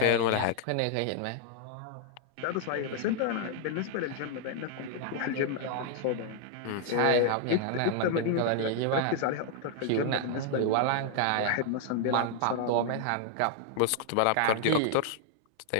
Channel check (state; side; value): different; both; correlation 0.00